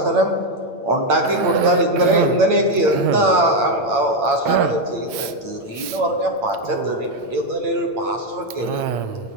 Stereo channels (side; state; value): left; late; 8.8 ms